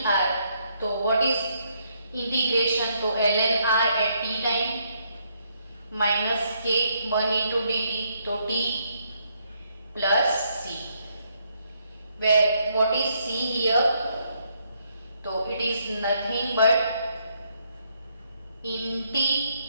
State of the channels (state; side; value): inverted; both; correlation -0.73